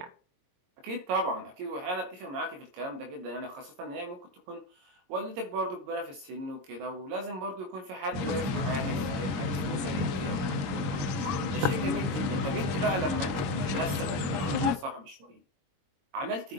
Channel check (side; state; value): left; late; 22 ms